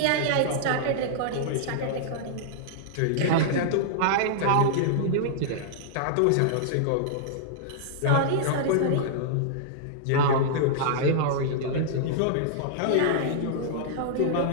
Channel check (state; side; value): different; both; correlation -0.01